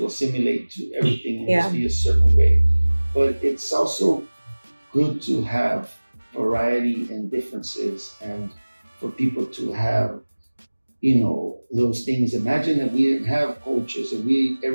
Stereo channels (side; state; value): both; inverted; correlation -1.00